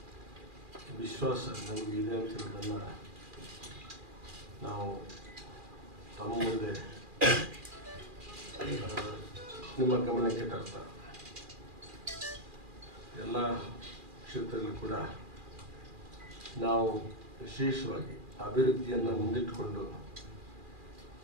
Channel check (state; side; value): late; left; 2.4 ms